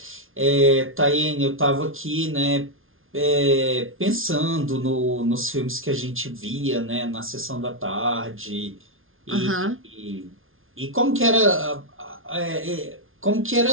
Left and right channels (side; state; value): left; late; 0.60 ms